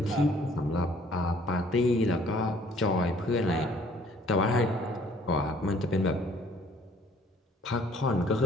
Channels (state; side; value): normal; both; correlation 0.58